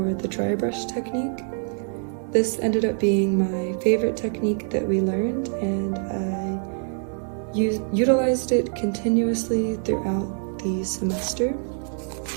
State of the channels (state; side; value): silent; left; 58 dB below the other